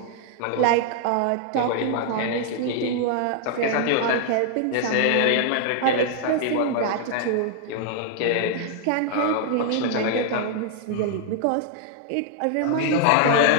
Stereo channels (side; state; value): both; different; correlation 0.00